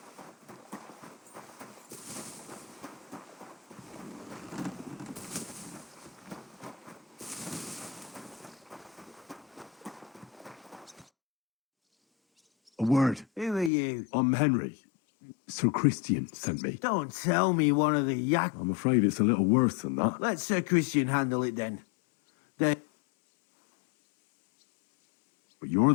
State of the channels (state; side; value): drops out; right; at 13.7 s